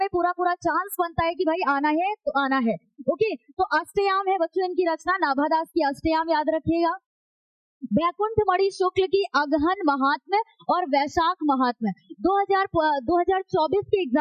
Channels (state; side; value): identical; both; correlation 1.00